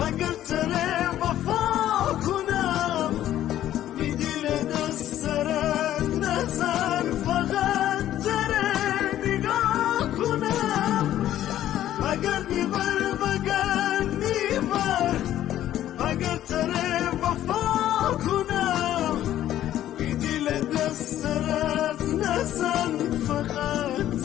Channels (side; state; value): right; quieter; 12.4 dB